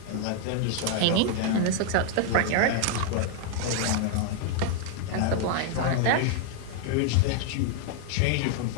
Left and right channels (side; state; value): both; different; correlation 0.00